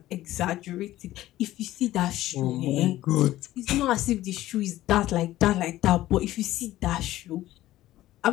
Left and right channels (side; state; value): right; quieter; 15.1 dB